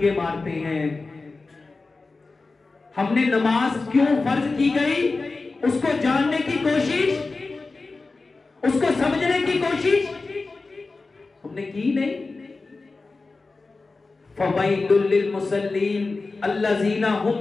मारते हैं। हमने नमाज क्यों फर्ज की गई, उसको जानने की कोशिश, उसको समझने की कोशिश हमने की नहीं। फवैलुल लिल मुसल्लीन अल्लज़ीना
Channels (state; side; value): quieter; right; 3.7 dB